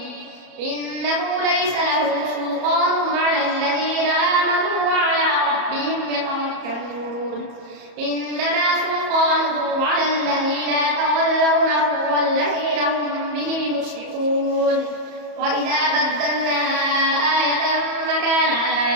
إنه ليس له سلطان على الذين آمنوا وعلى ربهم يتوكلون إنما سلطانه على الذين يتولونه والذين هم به مشركون وإذا بدلنا آية مكان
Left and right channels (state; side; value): late; left; 34 ms